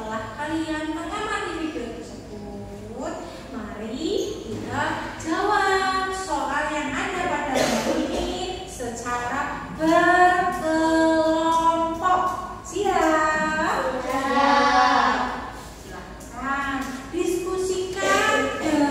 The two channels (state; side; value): identical; both; correlation 1.00